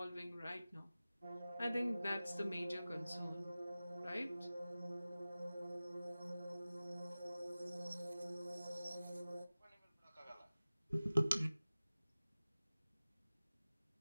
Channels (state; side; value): inverted; both; correlation -0.97